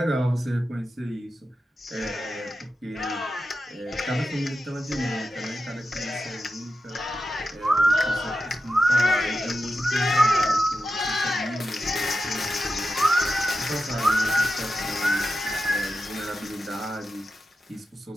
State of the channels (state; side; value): normal; both; correlation 0.90